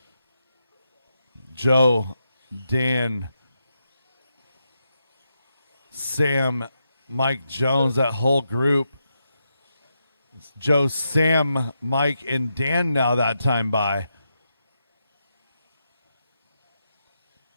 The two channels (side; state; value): both; inverted; correlation -0.85